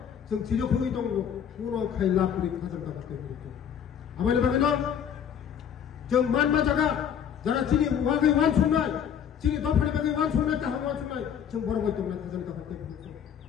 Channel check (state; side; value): quieter; right; 8.4 dB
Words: जों 지적하고 있던 거 পুরো খাইলা করে খাজানা করতে বলছো আমাদের বাগেনো जों 만마자가 যারা চিনি ওয়াগে ওয়ান শুনাই চিনি দফারি বাগে ওয়ান শুনাই তাহা ওয়ান শুনাই जों বড় বই তোমরা খাজানা করতে বলছো